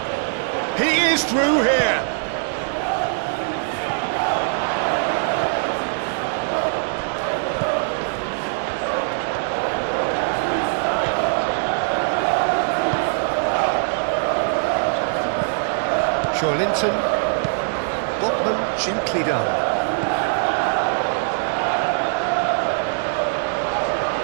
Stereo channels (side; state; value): left; silent; digital silence